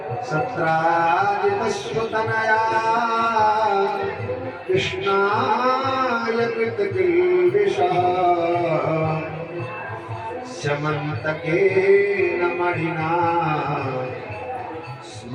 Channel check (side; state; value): both; identical; correlation 1.00